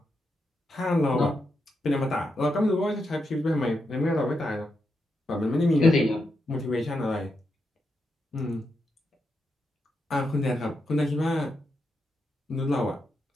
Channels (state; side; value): normal; both; correlation 0.84